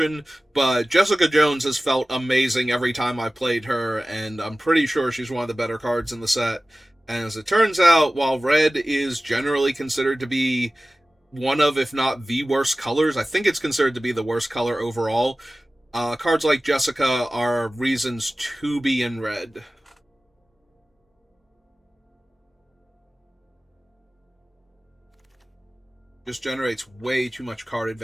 but Jessica Jones has felt amazing every time I played her, and I'm pretty sure she's one of the better cards in the set. And as it turns out, while Red is generally considered to be one of, if not the worst colors, I think it's considered to be the worst color overall, cards like Jessica are reasons to be in Red. Just generates way too much card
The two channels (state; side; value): normal; both; correlation 0.97